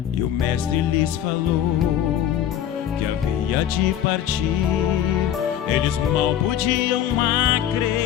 E o mestre lhes falou que havia de partir. Eles mal podiam acreditar.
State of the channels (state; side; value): quieter; right; 10.3 dB